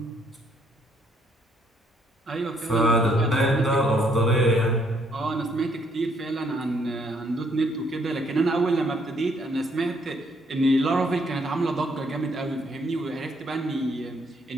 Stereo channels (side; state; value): both; normal; correlation 0.69